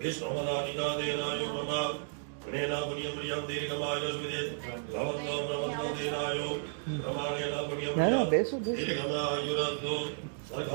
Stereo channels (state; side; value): silent; left; digital silence